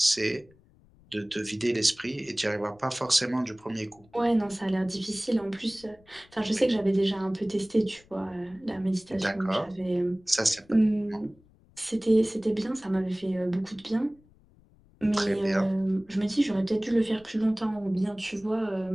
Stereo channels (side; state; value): left; noise; rumble, 29 dB below the sound